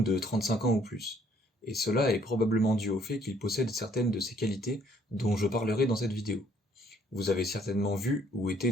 de 35 ans ou plus. Et cela est probablement dû au fait qu'ils possèdent certaines de ces qualités dont je parlerai dans cette vidéo. Vous avez certainement vu ou été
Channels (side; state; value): both; normal; correlation 0.63